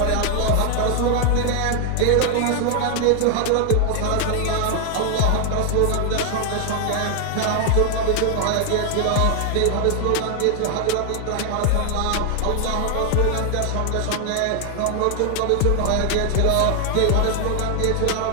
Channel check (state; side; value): different; both; correlation 0.00